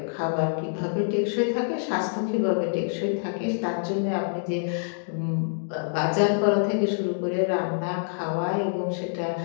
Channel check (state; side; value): silent; right; digital silence